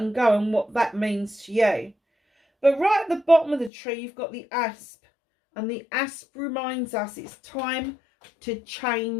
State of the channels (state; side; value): drops out; right; at 3.7 s